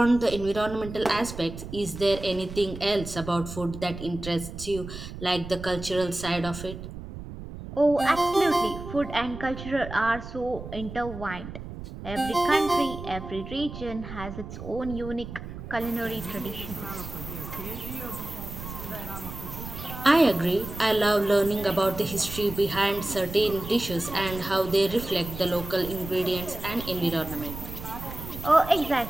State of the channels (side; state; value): right; noise; rumble, 10 dB below the sound